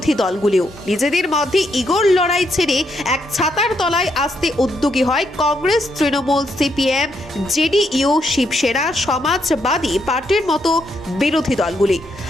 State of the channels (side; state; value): both; normal; correlation 0.77